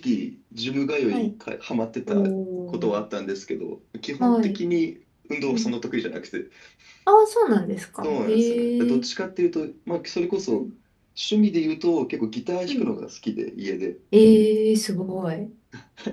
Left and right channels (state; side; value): identical; both; correlation 1.00